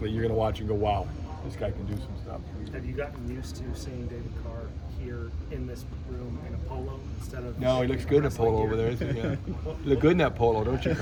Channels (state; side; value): identical; both; correlation 1.00